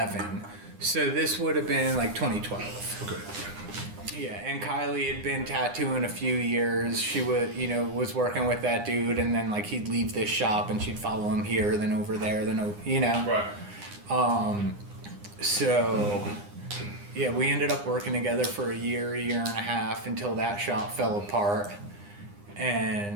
So this would have been like 2012. Okay. Yeah, and Kylie had been tattooing a few years. She would, was working with that dude, and then like he'd leave this shop and she'd follow him here, then over there, then Right. So yeah, we ended up working together for a year and a half until that shop fell apart.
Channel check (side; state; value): left; late; 9.8 ms